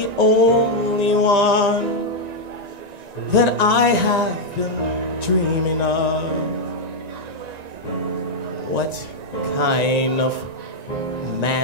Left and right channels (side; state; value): left; late; 1.9 ms